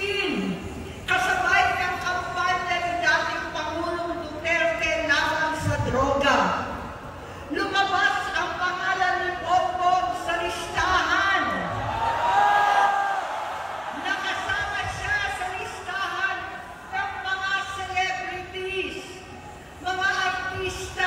kasabay ng kampanya ni dating Pangulong Duterte laban sa droga, lumabas ang pangalan ni Bongbong sa listahan. Nakasama siya sa listahan ng mga celebrities, mga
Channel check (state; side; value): identical; both; correlation 1.00